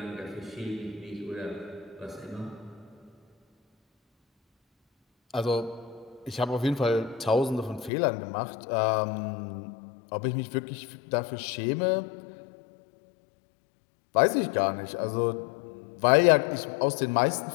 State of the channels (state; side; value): drops out; right; at 7.9 s